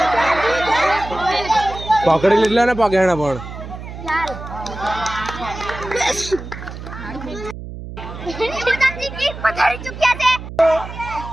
पकड़ी लीला ना पकड़ना पण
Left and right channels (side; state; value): right; noise; hum, 11 dB below the sound